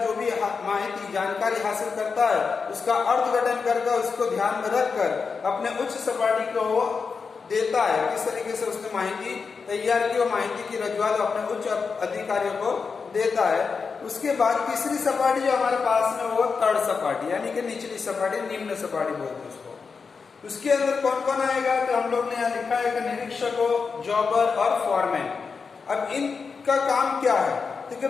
जो भी माहिती जानकारी हासिल करता है उसका अर्थघटन करके उसको ध्यान में रखकर अपने उच्च सपाटी को वो देता है। किस तरीके से उसने माहिती तैयार की, वो माहिती की रजूआत अपने उच्च अधिकारियों को देता है। उसके बाद तीसरी सपाटी जो हमारे पास में वो थर्ड सपाटी यानी कि निचली सपाटी, निम्न सपाटी बोलते हैं उसको। उसके अंदर कौन कौन आएगा, तो हम लोग ने यहाँ लिखा है कि निरीक्षकों, जॉबर और फॉरमैन। अब इनका काम क्या है, क्योंकि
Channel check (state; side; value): quieter; right; 5.2 dB